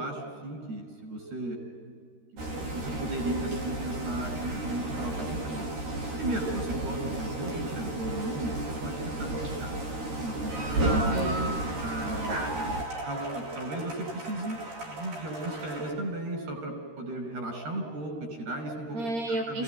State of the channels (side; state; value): left; late; 13 ms